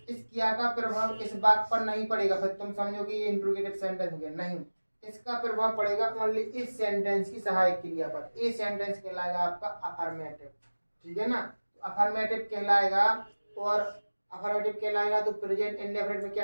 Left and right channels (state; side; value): inverted; both; correlation -1.00